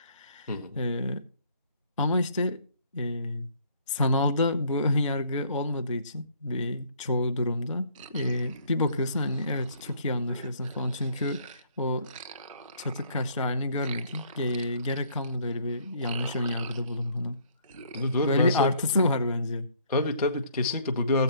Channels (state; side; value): inverted; both; correlation -0.61